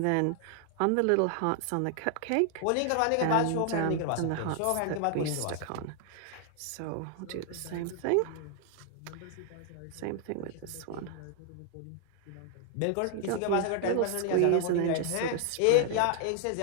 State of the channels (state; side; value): different; both; correlation 0.00